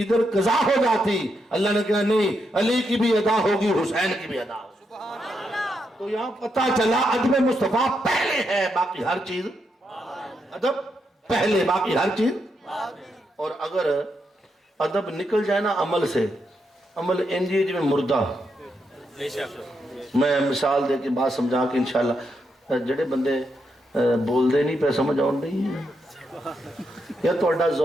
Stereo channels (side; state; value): both; normal; correlation 0.81